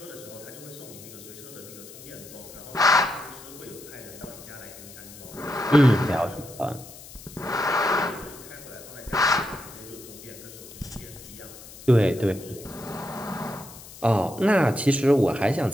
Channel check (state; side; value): noise; left; hiss, 17 dB below the sound